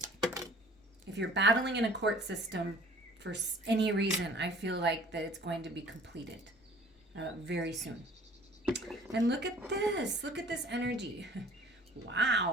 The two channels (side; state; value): both; normal; correlation 0.51